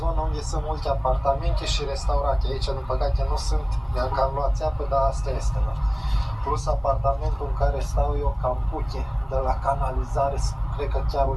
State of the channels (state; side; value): identical; both; correlation 1.00